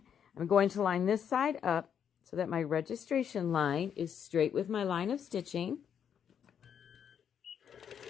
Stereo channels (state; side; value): quieter; right; 8.2 dB